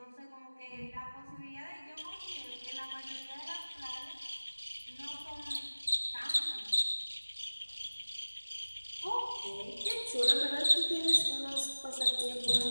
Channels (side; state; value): both; inverted; correlation -1.00